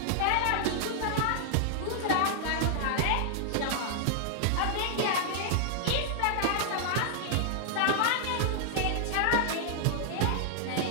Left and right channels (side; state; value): both; different; correlation -0.01